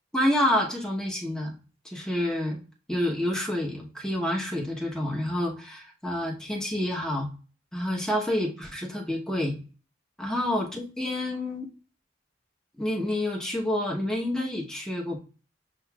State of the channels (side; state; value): both; normal; correlation 0.72